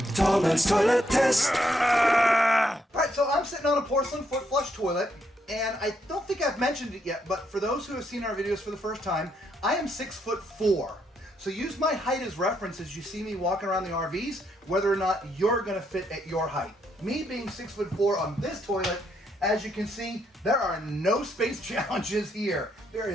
Tallman's Toilet Test. All right, so I'm sitting on a porcelain foot flush toilet, and I don't think I've mentioned it yet, but for those who have seen our videos for the first time, I am 6'4". So use my height as reference as you see me walking around the RVs, whether or not you're gonna fit at your height. Me being 6'4" on this toilet, as you can see, there are no space challenges here. There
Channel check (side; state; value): both; normal; correlation 0.76